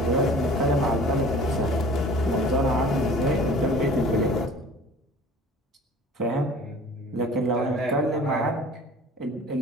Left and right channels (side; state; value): both; normal; correlation 0.46